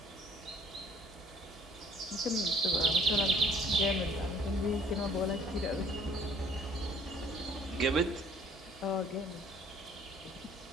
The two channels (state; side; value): normal; both; correlation 0.57